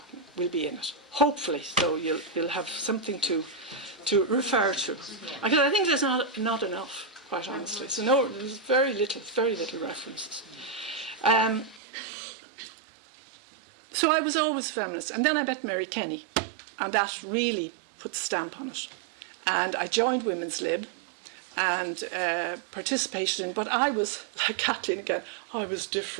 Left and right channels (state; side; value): drops out; left; at 11.8 s